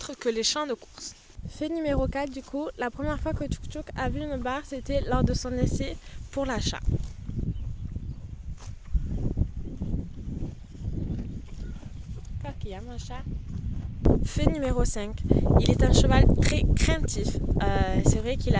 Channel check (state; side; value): identical; both; correlation 1.00